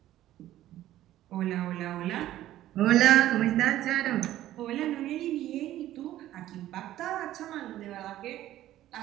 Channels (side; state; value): left; quieter; 13.7 dB